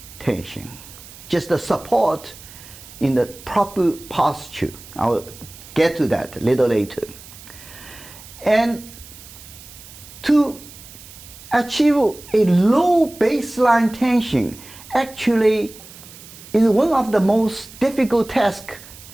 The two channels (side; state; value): right; noise; hiss, 18 dB below the sound